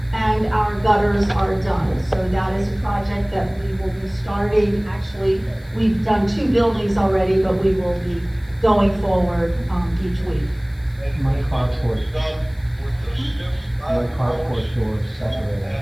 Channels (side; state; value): left; noise; hiss, 30 dB below the sound